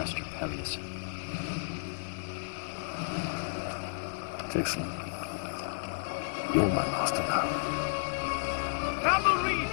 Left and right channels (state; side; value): silent; right; digital silence